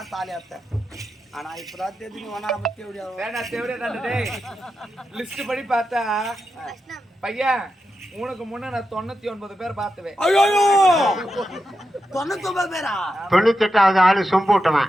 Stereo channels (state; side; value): normal; both; correlation 0.88